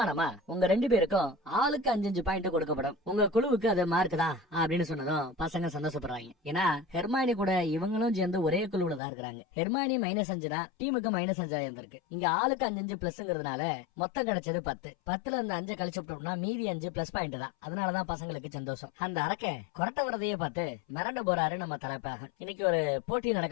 உங்க 2 பேருக்கும் ஆளுக்கு 5 பாயிண்ட் கொடுக்கப்படும், உங்க குழுவுக்கு அது மார்க் தான் அப்படின்னு சொன்னதும் பசங்க சந்தோஷப்படுறாங்க. ஏன்னா ஹெர்மாயினி கூட இவங்களும் சேர்ந்து ஒரே குழுவுல தான் இருக்கிறாங்க. ஹெர்மாயினி -5 டீமுக்கு -5 இருந்திருக்கு. இங்க ஆளுக்கு 5 பிளஸ்ங்கிறதுனால மொத்தம் கிடைச்சது 10. 10ல இருந்து 5 கழிச்சு விட்டோம்னா மீதி 5 பிளஸ் பாயிண்ட் தான். அதனாலதான் பசங்களுக்கு சந்தோஷம். அந்த அரக்க கொரட்ட வரதையே பார்த்து மிரண்டு போறாரு நம்ம தலைப்பாக. இன்னைக்கு ஒரு போட்டி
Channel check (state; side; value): drops out; right; at 9.0 s